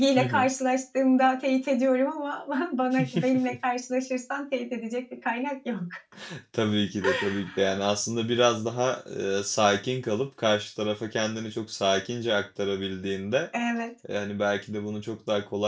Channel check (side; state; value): both; identical; correlation 1.00